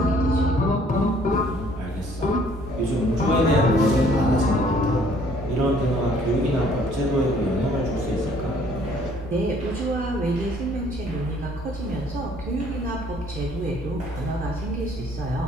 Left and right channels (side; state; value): both; normal; correlation 0.60